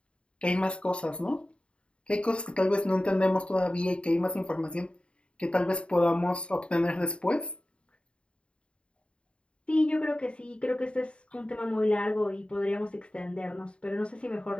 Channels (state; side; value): late; right; 0.057 ms